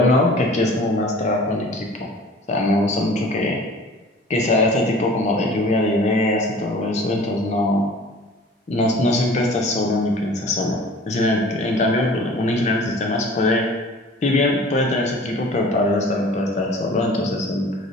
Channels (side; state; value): both; normal; correlation 0.45